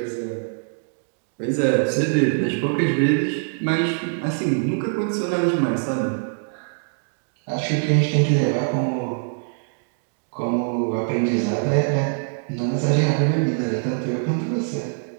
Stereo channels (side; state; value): left; silent; digital silence